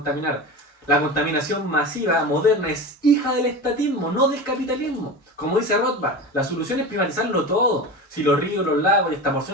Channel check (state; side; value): normal; both; correlation 0.28